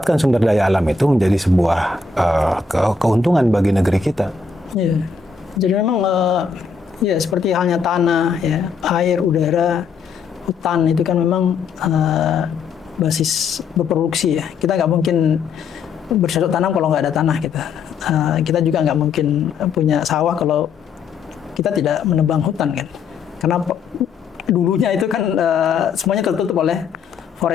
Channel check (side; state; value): right; quieter; 5.1 dB